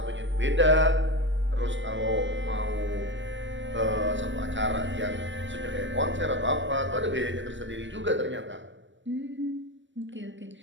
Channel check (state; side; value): late; left; 0.54 ms